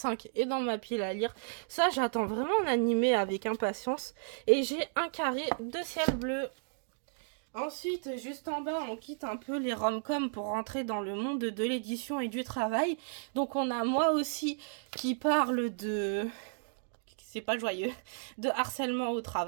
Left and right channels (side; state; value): left; silent; digital silence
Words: est dans ma pile à lire. Ça, j'attends vraiment l'animé avec impatience. Et j'ai un carré de ciel bleu. Ensuite, juste en bas, on quitte un peu les rom-com pour rentrer dans le monde de l'édition et du travail. Donc on a moi aussi qui parle de... C'est pas joyeux. De harcèlement au